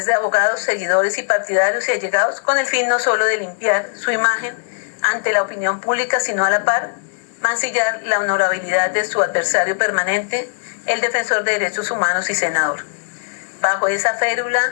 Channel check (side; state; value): right; silent; digital silence